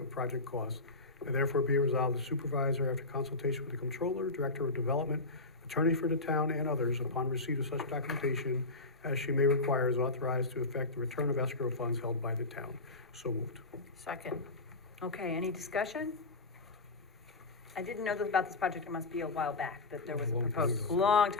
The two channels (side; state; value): right; quieter; 3.2 dB